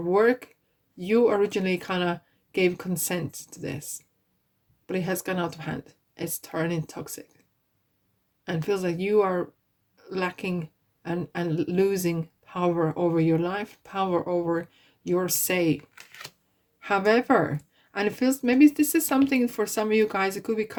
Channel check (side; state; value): both; identical; correlation 1.00